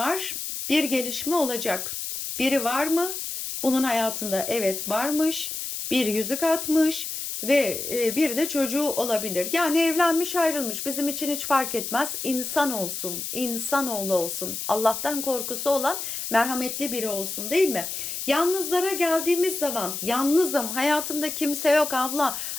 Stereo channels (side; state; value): left; noise; hiss, 5 dB below the sound